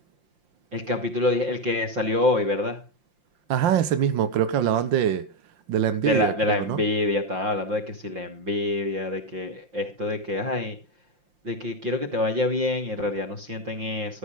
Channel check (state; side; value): late; left; 5.7 ms